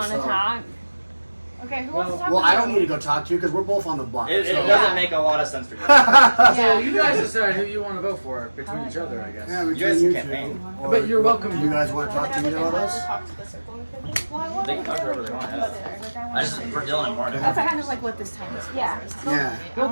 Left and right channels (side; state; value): both; inverted; correlation -1.00